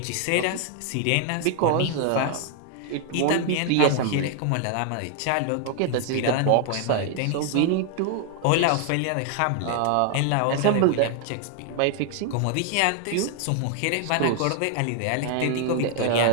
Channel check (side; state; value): both; different; correlation 0.00